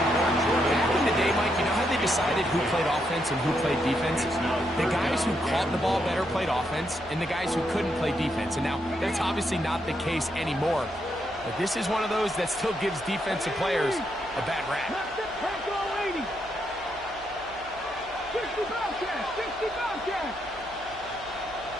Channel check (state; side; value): noise; right; hum, 21 dB below the sound